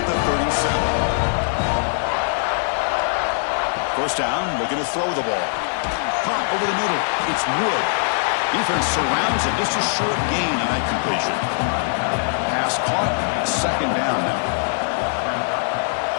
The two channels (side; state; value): right; silent; digital silence